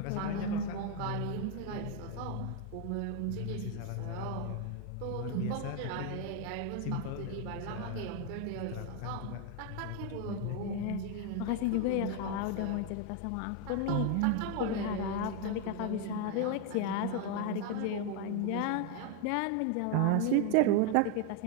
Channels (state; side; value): different; both; correlation 0.01